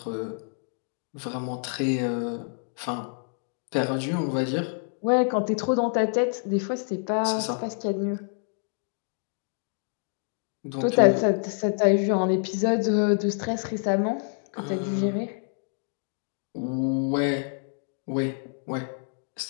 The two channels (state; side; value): silent; right; 60 dB below the other